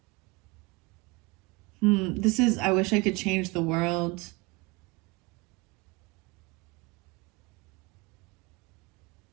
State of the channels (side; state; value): left; quieter; 24.6 dB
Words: This is I Wish I Could Change the World.